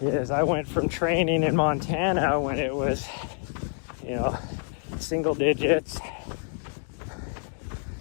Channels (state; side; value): silent; right; 56 dB below the other